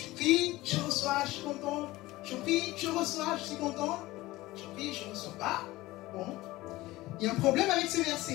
prie, je reçois, je suis content. Je prie, je reçois, je suis content. Je prie, je ne reçois pas. Bon. Il y a un problème avec ce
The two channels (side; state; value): right; quieter; 18.6 dB